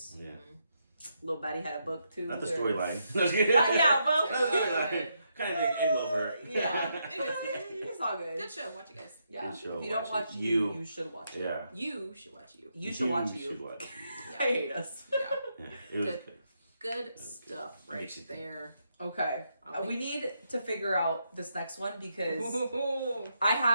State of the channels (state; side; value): inverted; both; correlation -0.80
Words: Yeah. Little Betty had a book too. Not the where- storyline. Yeah, well, Not the storyline. Kind of didn't end well for her. yeah. It's all good. Good show. Watch it, guys. Yeah. Good show. If you don't Watch watch it. you should watch it. Yeah. You should watch you. You should watch Should you. watch I hate us. Yeah. Yeah. It was Good. good. Good stuff right Makes you think. there. Okay. I'll We need to figure out this next one because Ooh. I